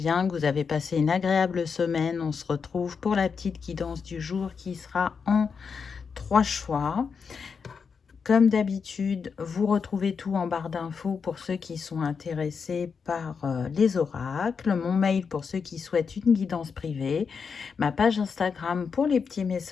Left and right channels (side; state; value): right; quieter; 5.8 dB